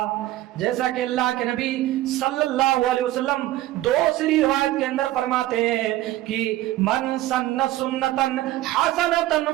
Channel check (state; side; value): quieter; left; 15.6 dB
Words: जैसा कि अल्लाह के नबी सल्लल्लाहु अलैहि वसल्लम दूसरी रिवायत के अंदर फरमाते हैं कि मन सन्न सुन्नतन हसनतन